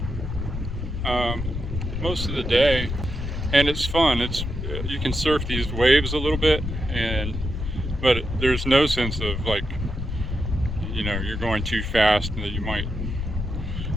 most of the day, and it's fun. You can surf these waves a little bit, but there's no sense of like, you know, you're going too fast and that you might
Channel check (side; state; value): left; noise; rumble, 4 dB below the sound